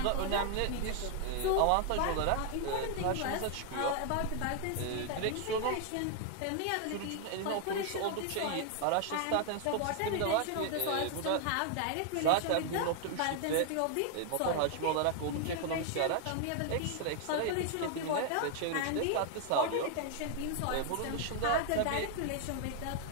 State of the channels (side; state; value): both; different; correlation 0.00